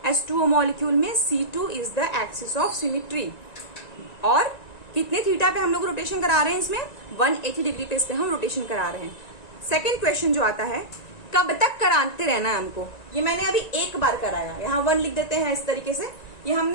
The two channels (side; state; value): right; late; 1.9 ms